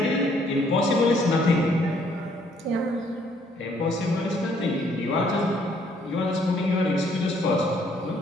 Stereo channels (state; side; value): normal; both; correlation 0.65